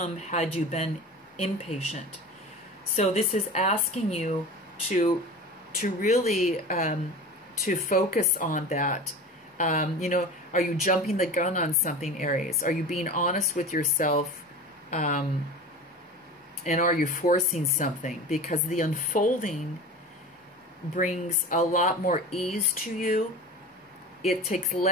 had you been impatient. So this is asking you to really to focus on that. You know, are you jumping the gun on something, Aries? Are you being honest with yourself? And are you forcing something? Because the unfolding brings a lot more ease to you. It takes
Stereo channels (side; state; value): both; normal; correlation 0.34